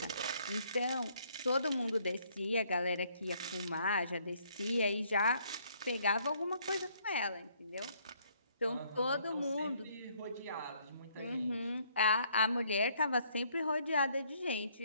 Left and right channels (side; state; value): both; inverted; correlation -0.66